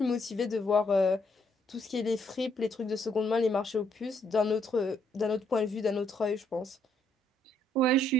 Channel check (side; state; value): both; normal; correlation 0.71